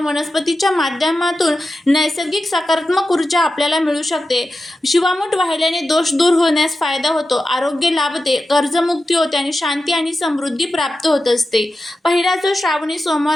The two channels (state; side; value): normal; both; correlation 0.92